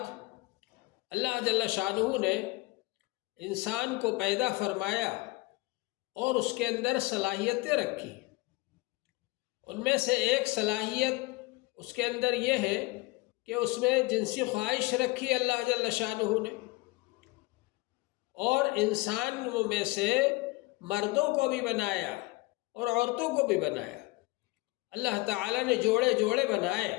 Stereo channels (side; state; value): right; quieter; 22.5 dB